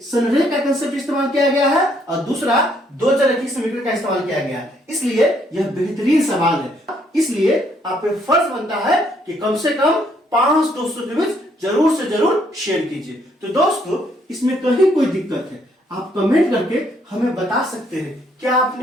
संरेख का कंसेप्ट इस्तेमाल किया गया है और दूसरा 2 चरकी समीकरण का इस्तेमाल किया गया है। इसलिए यह बेहतरीन सवाल है, इसलिए आप पे फर्ज बनता है कि कम से कम 5 दोस्तों के बीच जरूर से जरूर शेयर कीजिए। तो दोस्तों इसमें कहीं कोई दिक्कत है आप कमेंट करके हमें बता सकते हैं। क्या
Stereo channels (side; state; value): both; normal; correlation 0.69